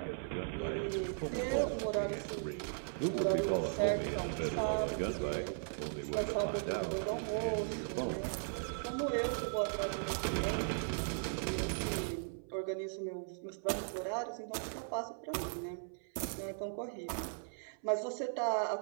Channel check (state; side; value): silent; left; 53 dB below the other